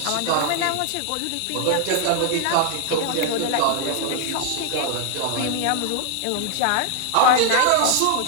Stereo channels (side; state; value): both; different; correlation 0.00